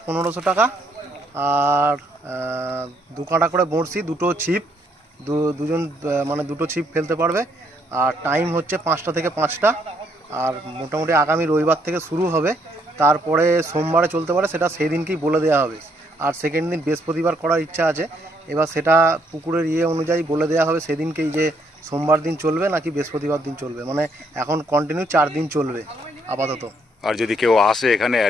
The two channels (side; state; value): both; normal; correlation 0.70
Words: 1500 টাকা। আর দু কাঁটা করে বড়শি, দুটো ছিপ, দুজন মানে দুটো ছিপ ফেলতে পারবে। আর টাইম হচ্ছে 5টা থেকে 5টা। আর মোটামুটি আগামী রবিবার থেকে শুরু হবে, তারপরে সোমবারে চলতে পারে, সেটা সেই দিনকেই বলে দেওয়া হবে। আর সেকেন্ড দিন বৃহস্পতিবার করার ইচ্ছা আছে, এবার সেটা পুকুরের অনুযায়ী বলে দেওয়া হবে সেদিনকেই, যে সোমবার দিন চলবে নাকি বৃহস্পতিবার দিন চলবে। মানে এখন কন্টিনিউ 4 দিন চলবে আপাতত। আর যদি কেউ আসে এখানে